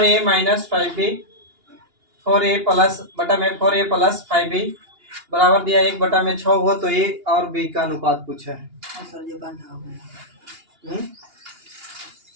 minus 5b 4a plus बटा में 4a प्लस 5b बराबर दिया 1/6 हो तो a और b का अनुपात पूछा है।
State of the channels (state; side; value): late; left; 2.8 ms